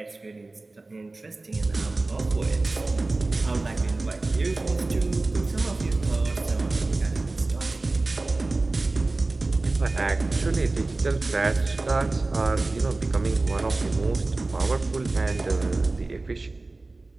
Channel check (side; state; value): left; quieter; 3.2 dB